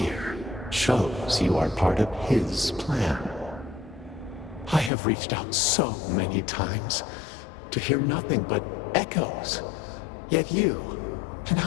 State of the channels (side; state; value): right; drops out; at 4.9 s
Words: shows you are part of his plan. I have reached out so many times to hear nothing but echoes, yet you, an